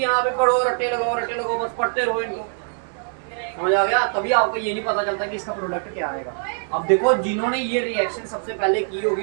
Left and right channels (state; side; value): silent; left; digital silence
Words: पे पढ़ो, रट्टे लगाओ, बस पढ़ते रहो इनको, समझ आ गया। तभी आपको ये नहीं पता चलता कि इसका प्रोडक्ट क्या आएगा। अब देखो, जिन्होंने ये रिएक्शन सबसे पहले की